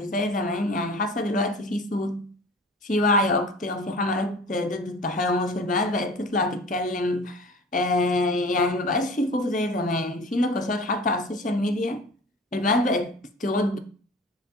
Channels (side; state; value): both; normal; correlation 0.41